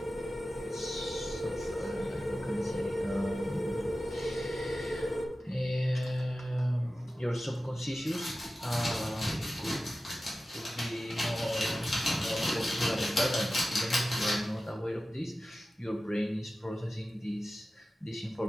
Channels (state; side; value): normal; both; correlation 0.95